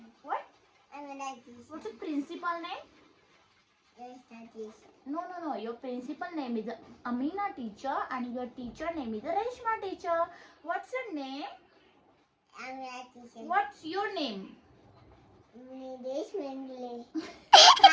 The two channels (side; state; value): both; identical; correlation 1.00